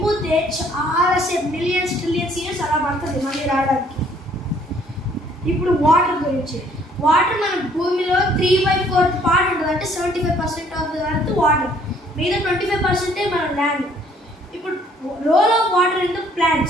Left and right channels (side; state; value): both; normal; correlation 0.61